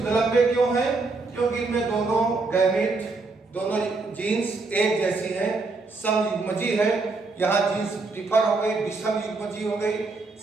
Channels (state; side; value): quieter; left; 3.7 dB